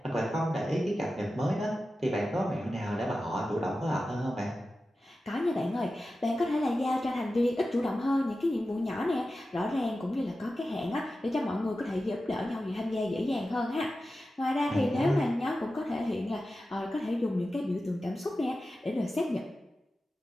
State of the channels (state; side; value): normal; both; correlation 0.93